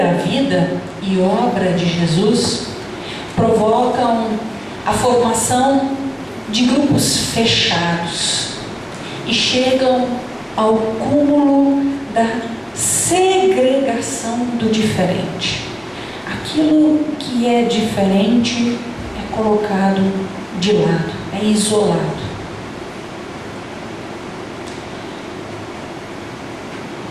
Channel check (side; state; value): both; identical; correlation 1.00